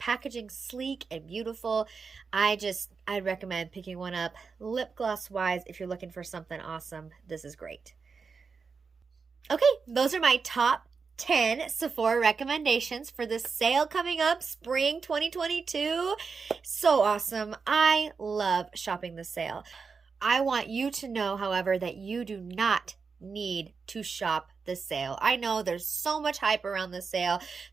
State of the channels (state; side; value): quieter; left; 5.1 dB